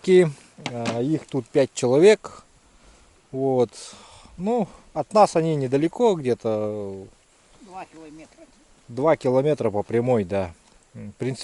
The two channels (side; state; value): both; identical; correlation 1.00